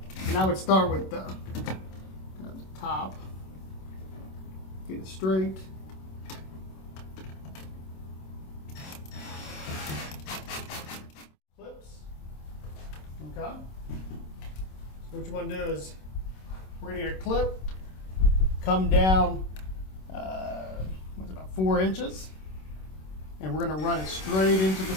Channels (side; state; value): right; late; 26 ms